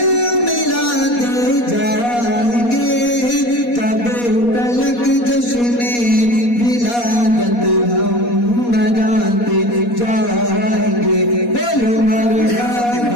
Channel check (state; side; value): late; right; 4.2 ms